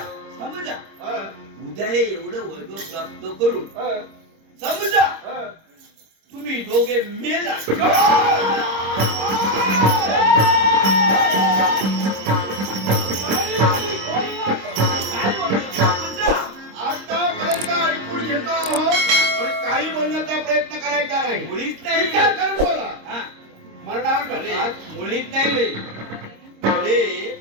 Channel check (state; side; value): late; left; 26 ms